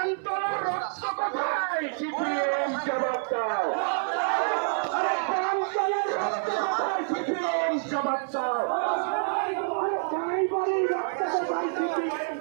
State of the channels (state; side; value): silent; left; 60 dB below the other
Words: রক্ত কোথায়? সিপিএম জবাব দাও। প্রান্তরের রক্ত কোথায়? সিপিএম জবাব দাও। ড্রাইভারের রক্ত কোথায়? সিপিএম